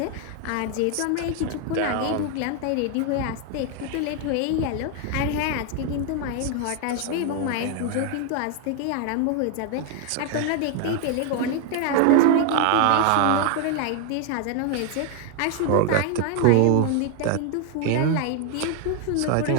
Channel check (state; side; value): different; both; correlation 0.00